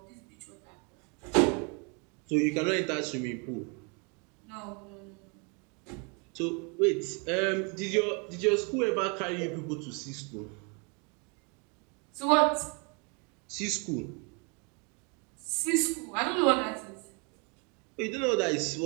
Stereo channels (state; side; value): quieter; left; 34.1 dB